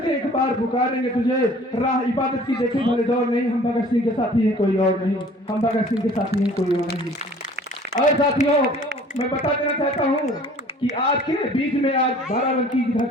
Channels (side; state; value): both; normal; correlation 0.50